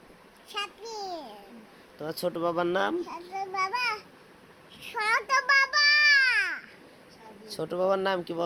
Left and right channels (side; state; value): both; identical; correlation 1.00